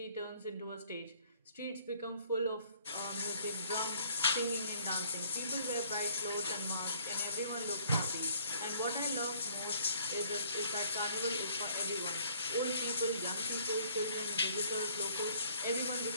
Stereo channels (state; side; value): inverted; both; correlation -0.61